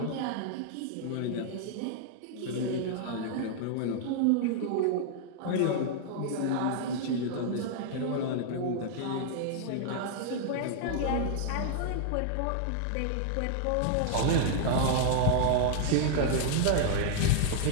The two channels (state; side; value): different; both; correlation -0.01